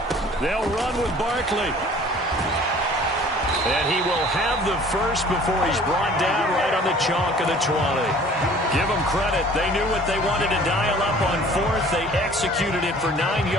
They'll run with Barkley. And he will have the first before he's brought down right on the chalk of the 20. Give them credit. They knew what they wanted to dial up on fourth. They executed it for 9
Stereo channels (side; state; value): both; normal; correlation 0.50